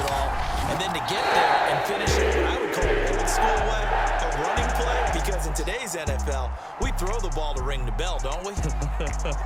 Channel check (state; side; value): identical; both; correlation 1.00